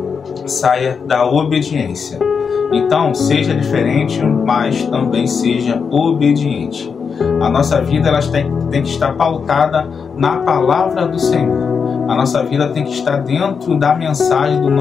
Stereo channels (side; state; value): right; quieter; 6.0 dB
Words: saia da obediência. Então, seja diferente, mas também seja obediente. A nossa vida tem que estar pautada na palavra do Senhor. A nossa vida tem que estar dentro da mensagem do